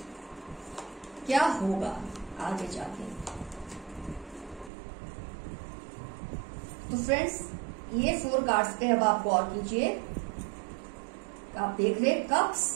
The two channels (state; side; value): drops out; left; at 4.7 s